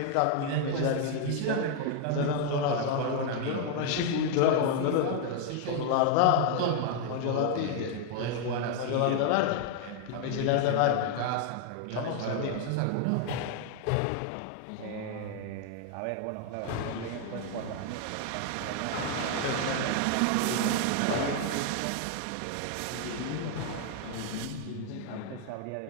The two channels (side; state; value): both; different; correlation 0.00